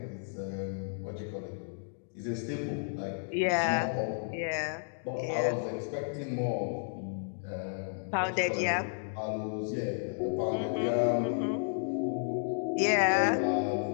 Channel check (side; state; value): right; silent; digital silence